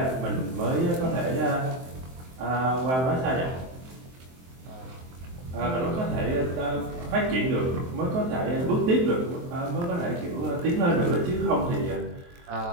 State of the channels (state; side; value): late; left; 23 ms